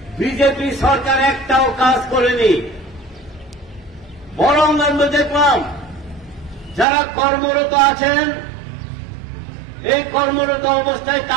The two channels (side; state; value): left; drops out; at 6.9 s